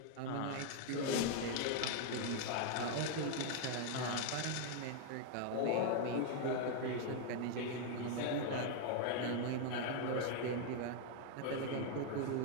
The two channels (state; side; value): different; both; correlation 0.00